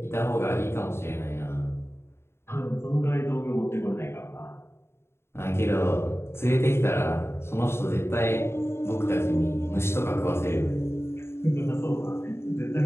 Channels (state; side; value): late; right; 0.12 ms